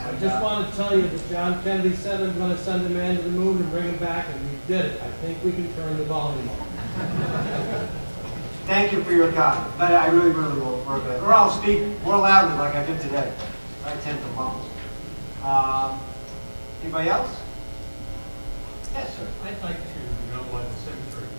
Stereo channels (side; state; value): both; inverted; correlation -1.00